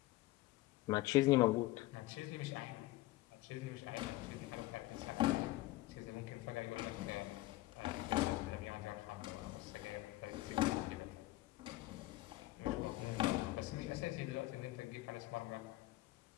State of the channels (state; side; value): quieter; right; 18.3 dB